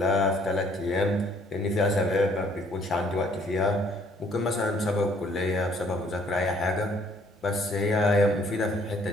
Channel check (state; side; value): normal; both; correlation 0.63